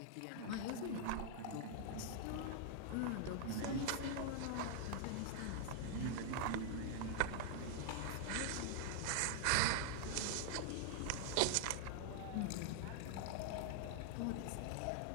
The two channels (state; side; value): different; both; correlation -0.01